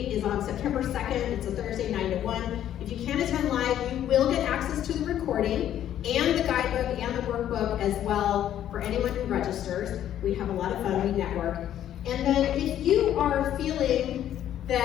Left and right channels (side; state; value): right; quieter; 11.1 dB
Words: is on September 2nd. It's a Thursday, 9 to 1. If you can't attend live, you will get access to the recording and the guidebook and the workbook as well for anyone who registers. We have a lot of fun, we network. And then if you are feeling